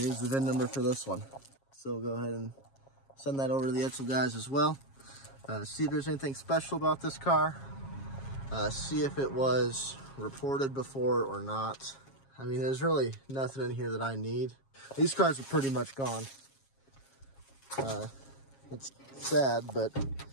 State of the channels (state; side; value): late; right; 7.4 ms